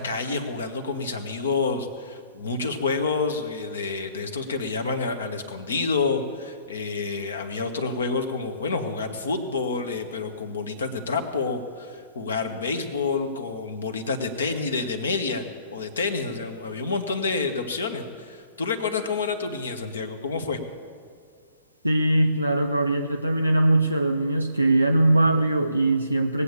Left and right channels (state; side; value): inverted; both; correlation -0.67